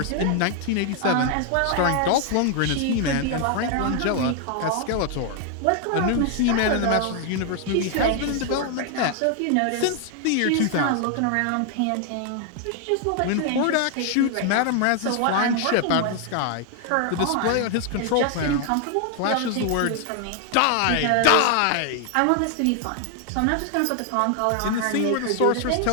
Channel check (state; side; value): different; both; correlation 0.00